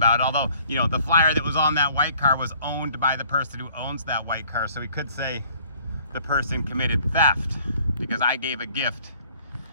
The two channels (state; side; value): inverted; both; correlation -0.58